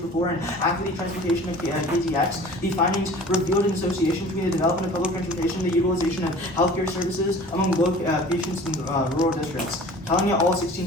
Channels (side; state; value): both; normal; correlation 0.44